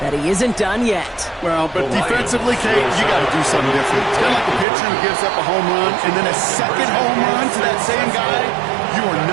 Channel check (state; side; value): drops out; left; at 4.7 s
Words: that he isn't done yet. Well, but defensively, Kate, you got to do something different. It's kind of like a pitcher who gives up a home run and then a 2nd home run to that same guy. You are